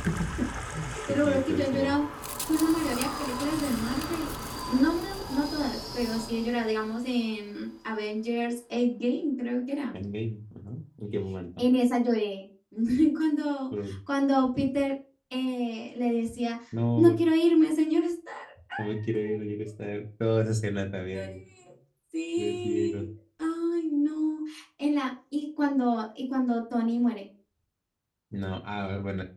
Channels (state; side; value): identical; both; correlation 1.00